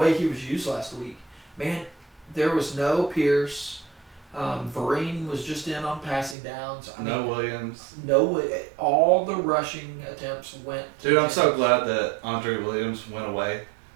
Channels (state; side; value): drops out; left; at 6.4 s